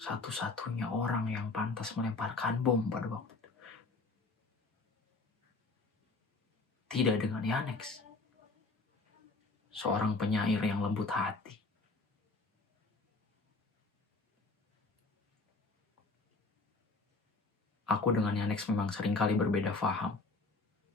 orang yang pantas melemparkan bom pada waktu itu. Tidak dengan Yanex, seorang penyair yang lembut hati. Aku dengan Yanex memang seringkali berbeda faham,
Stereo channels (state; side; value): quieter; right; 3.7 dB